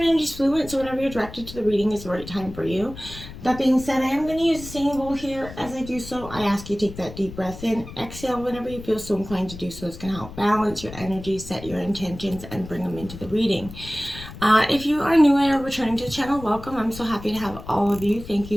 energy is fluid, so whenever you're directed to the reading is the right time for you. That being said, I am going to use the singing bowl here. As I do so, I ask you to take that deep breath in, exhale whenever you feel so inclined to do so. It's going to help balance your energy, set your intentions, and bring them into the reading. If you are new or returning to the channel, welcome. I'm so happy to have all of you. Thank you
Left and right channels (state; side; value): noise; left; rumble, 14 dB below the sound